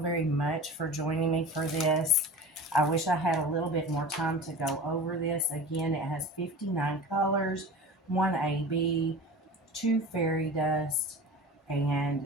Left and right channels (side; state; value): both; normal; correlation 0.35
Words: much for joining me for this. I wish I had a little bit more time to go over this. Again, it has 59 colors, 1 AB, 2 fairy dust,